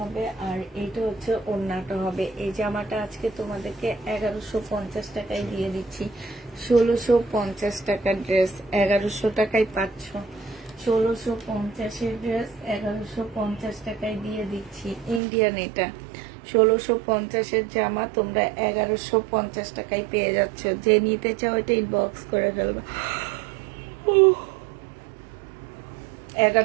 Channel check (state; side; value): drops out; left; at 15.2 s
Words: আর এইটা হচ্ছে ওড়নাটা হবে। এই জামাটা আজকে তোমাদেরকে 1150 টাকায় দিয়ে দিচ্ছি। 1650 টাকার ড্রেস 1100 টাকায় পাচ্ছ। 1650-এর ড্রেস 1150 টাকায় দিয়ে দিচ্ছি। ইন্ডিয়ান এটা 1650-এর জামা তোমরা 1150 টাকায় পেয়ে যাচ্ছ। যে নিতে চাও এটা ইনবক্স করে ফেলবে।